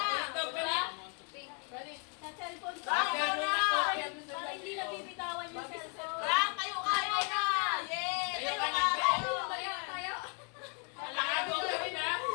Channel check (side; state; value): right; quieter; 37.5 dB